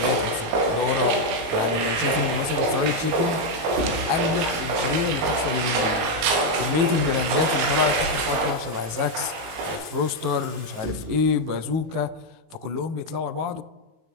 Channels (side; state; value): left; late; 19 ms